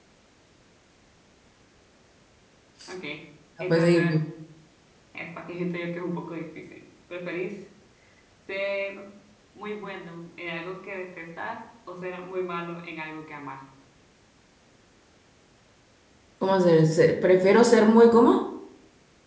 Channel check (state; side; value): identical; both; correlation 1.00